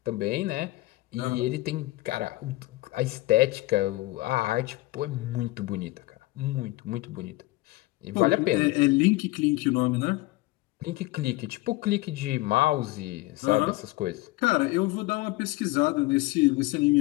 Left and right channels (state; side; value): quieter; right; 19.8 dB